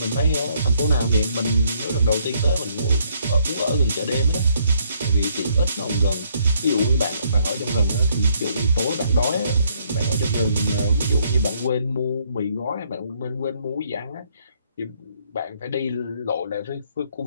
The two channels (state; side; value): inverted; both; correlation -0.68